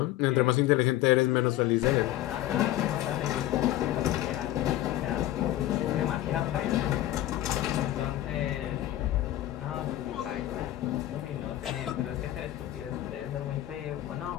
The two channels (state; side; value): quieter; right; 14.2 dB